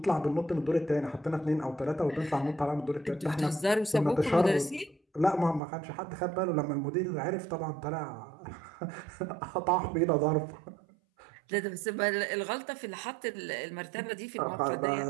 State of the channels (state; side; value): drops out; left; at 5.6 s